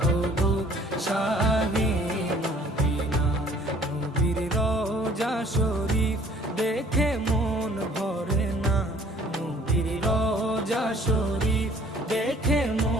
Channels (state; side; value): normal; both; correlation 0.56